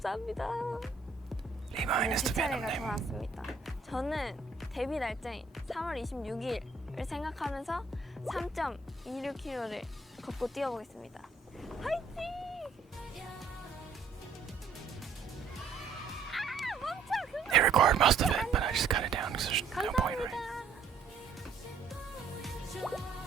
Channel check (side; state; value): left; quieter; 4.5 dB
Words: 리마인 is 제 the Venom 차례가 name. 돌아왔습니다. 저는 데뷔 날짜인 3월 26일을 생각하면서 3.26km를 걷고 뛰어보겠습니다. 화이팅! They record most of it, but I just cut it down because there's no point, right?